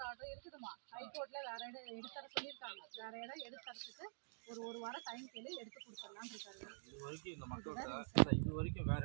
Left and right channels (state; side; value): silent; left; digital silence